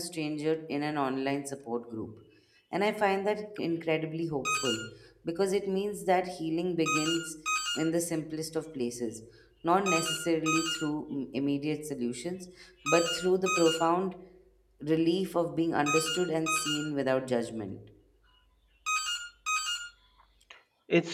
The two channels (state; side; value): identical; both; correlation 1.00